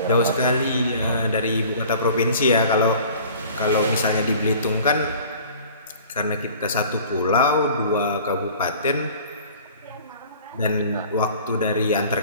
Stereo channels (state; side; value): inverted; both; correlation -0.47